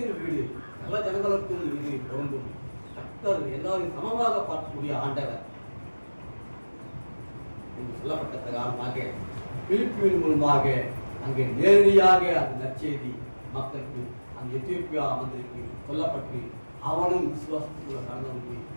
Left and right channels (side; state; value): both; inverted; correlation -1.00